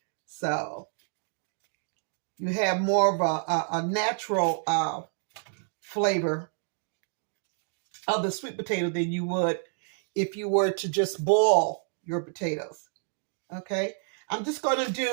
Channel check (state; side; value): silent; left; 59 dB below the other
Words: So you have more of a natural flavor of the sweet potato than you would if you were to just boil your potatoes. Okay, I'm just going to